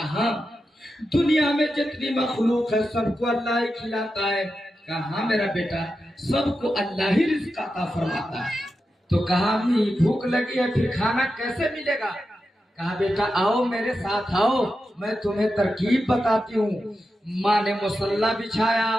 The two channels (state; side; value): normal; both; correlation 0.90